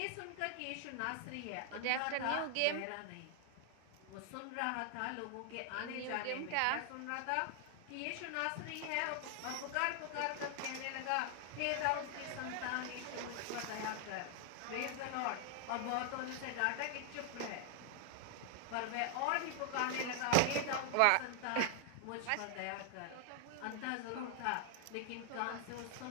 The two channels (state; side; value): different; both; correlation 0.00